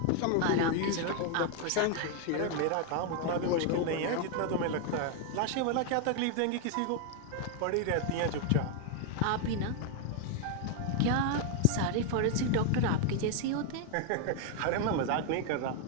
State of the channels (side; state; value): both; different; correlation 0.01